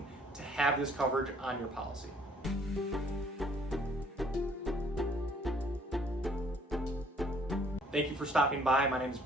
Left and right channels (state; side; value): normal; both; correlation 0.60